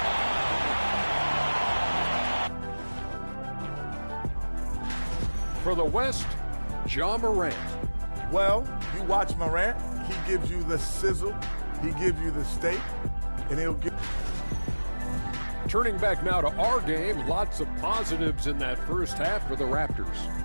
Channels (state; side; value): inverted; both; correlation -1.00